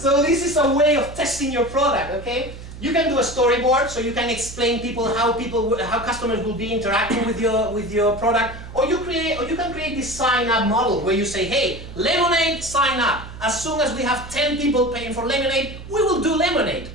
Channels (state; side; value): noise; right; hum, 13 dB below the sound